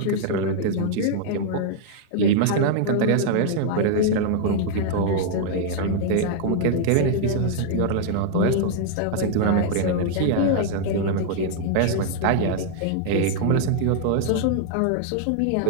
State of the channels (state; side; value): different; both; correlation -0.01